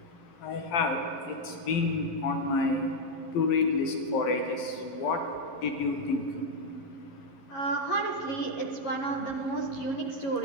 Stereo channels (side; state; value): right; late; 12 ms